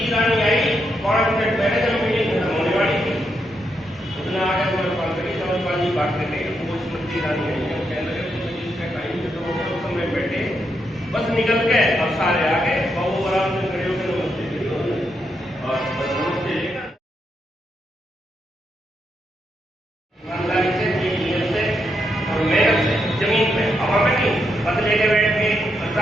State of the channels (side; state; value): both; normal; correlation 0.81